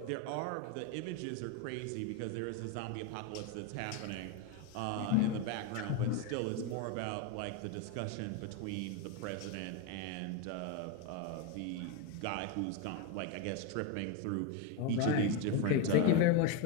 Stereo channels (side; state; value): both; different; correlation 0.02